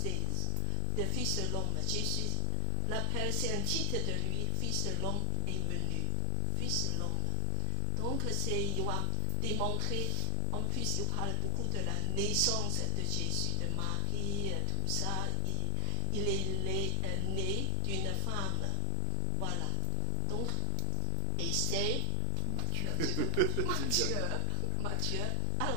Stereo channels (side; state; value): both; different; correlation 0.00